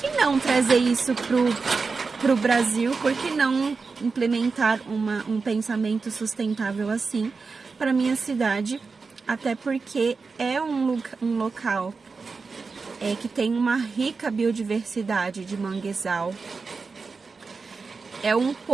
não trazer isso pro Brasil? Por que não implementar um pensamento sustentável assim para minha cidade? Até porque é um local que tem uma rica biodiversidade de manguezal.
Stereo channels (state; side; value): quieter; left; 4.5 dB